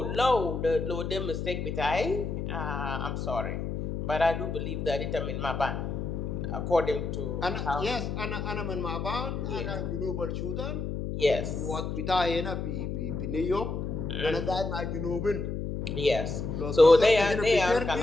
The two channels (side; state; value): left; noise; hum, 3 dB below the sound